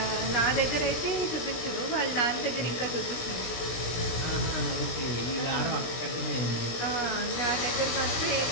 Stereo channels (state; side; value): late; right; 17 ms